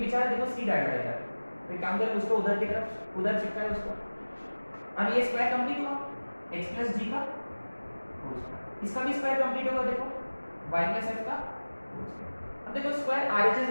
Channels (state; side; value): inverted; both; correlation -1.00